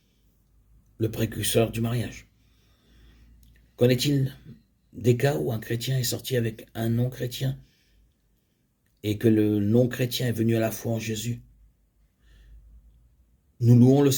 le précurseur du mariage. Qu'en est-il des cas où un chrétien est sorti avec un non-chrétien et que le non-chrétien est venu à la foi en Jésus? Nous louons le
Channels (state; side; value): identical; both; correlation 1.00